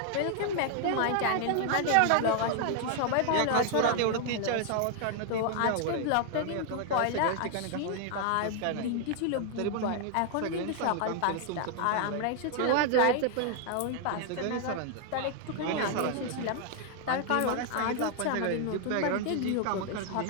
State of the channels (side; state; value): both; different; correlation 0.00